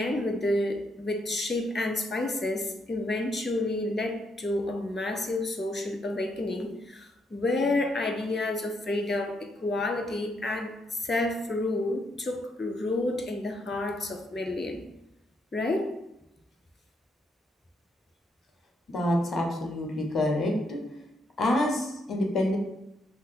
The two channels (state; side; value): normal; both; correlation 0.76